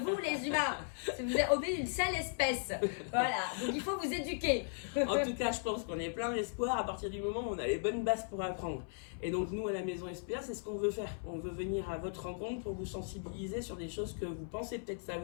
les humains. Vous êtes une sale espèce. Voilà. Donc il faut vous éduquer. En tout cas, je pense qu'on est plein d'espoir à partir du moment où on a les bonnes bases pour apprendre. Et donc nous, à la maison SPA, c'est ce qu'on veut faire. On veut venir à votre rencontre pour vous sensibiliser sur des choses que vous pensez peut-être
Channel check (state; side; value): silent; right; 53 dB below the other